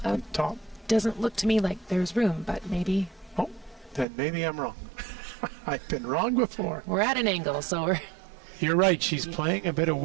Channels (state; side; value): drops out; left; at 4.0 s